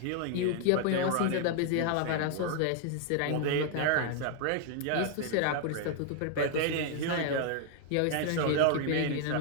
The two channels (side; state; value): both; different; correlation 0.00